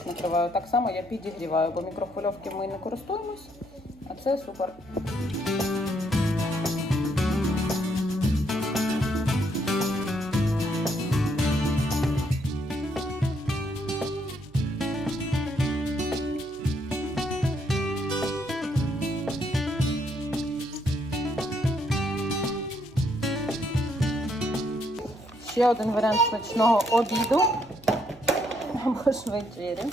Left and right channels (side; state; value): right; noise; hum, 23 dB below the sound